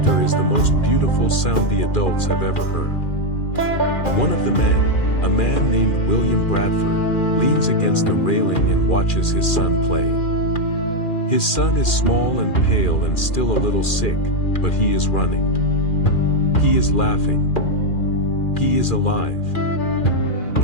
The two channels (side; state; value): right; late; 2.4 ms